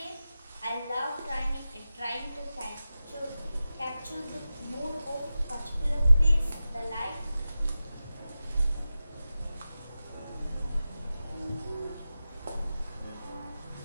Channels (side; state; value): both; inverted; correlation -0.94